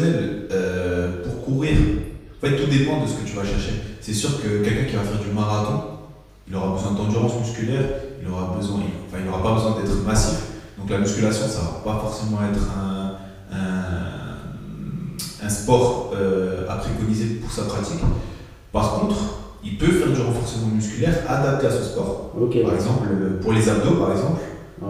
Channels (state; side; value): identical; both; correlation 1.00